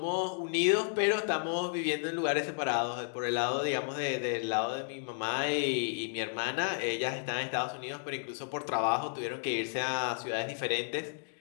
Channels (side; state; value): right; silent; digital silence